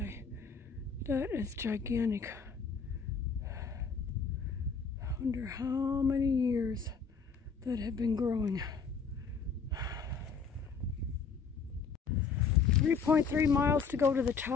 That is gigantic. I wonder how many years that have been growing. 3.3 miles to go to the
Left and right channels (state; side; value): quieter; right; 5.5 dB